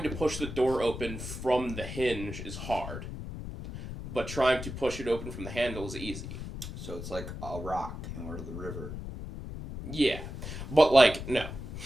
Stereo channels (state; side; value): noise; left; rumble, 8 dB below the sound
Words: to push the door open from the hinge is hard. But trying to push it open from the handle is easy. So it's like a rock in the river. Yeah, but like no.